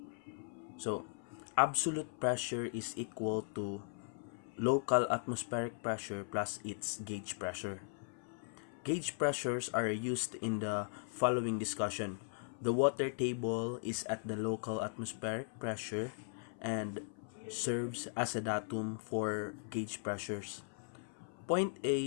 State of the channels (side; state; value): right; silent; 52 dB below the other